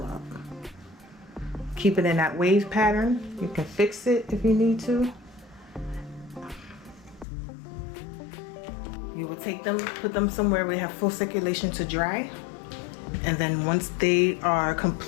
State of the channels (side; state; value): right; drops out; at 7.2 s